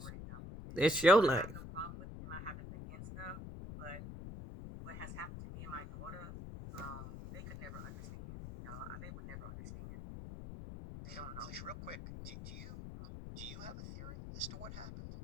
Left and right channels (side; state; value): left; noise; rumble, 10 dB below the sound